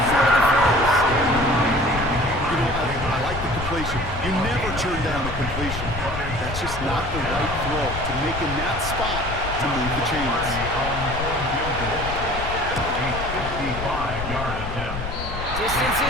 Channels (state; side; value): noise; left; rumble, 7 dB below the sound